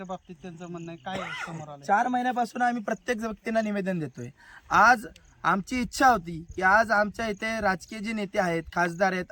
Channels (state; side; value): identical; both; correlation 1.00